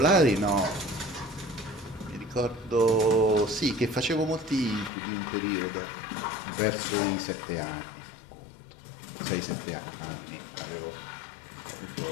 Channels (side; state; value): right; drops out; at 4.9 s